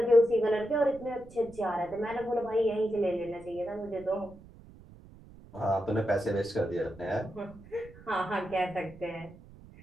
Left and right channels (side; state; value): right; noise; rumble, 20 dB below the sound